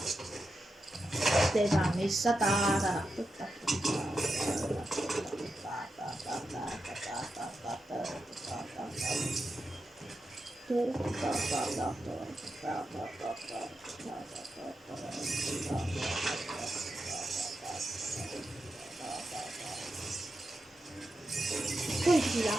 Ei saa missata.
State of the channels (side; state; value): both; normal; correlation 0.88